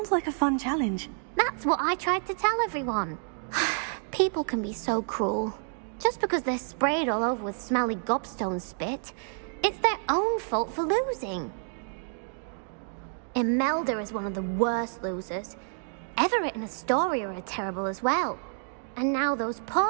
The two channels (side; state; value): left; silent; 57 dB below the other